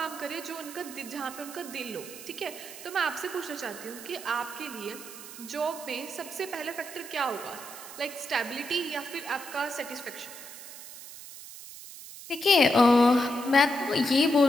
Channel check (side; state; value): right; noise; hiss, 14 dB below the sound